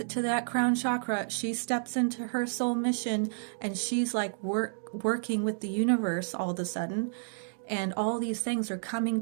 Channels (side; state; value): left; silent; digital silence